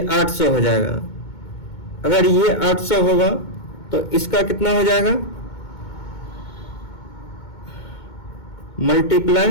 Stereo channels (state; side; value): late; right; 2.2 ms